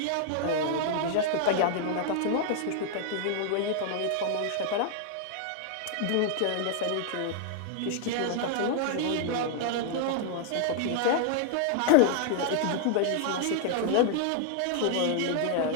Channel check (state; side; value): different; both; correlation 0.00